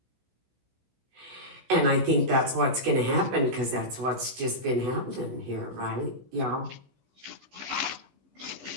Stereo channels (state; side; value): late; left; 16 ms